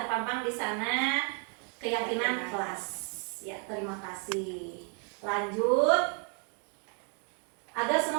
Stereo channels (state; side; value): quieter; left; 39.1 dB